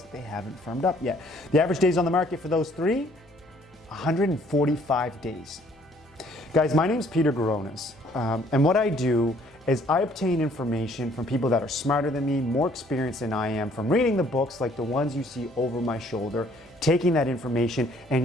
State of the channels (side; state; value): left; noise; hum, 30 dB below the sound